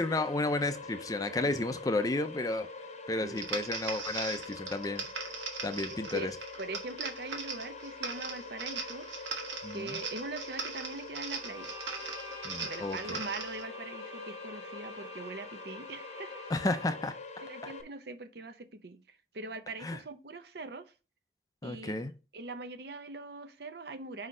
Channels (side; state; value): both; normal; correlation 0.34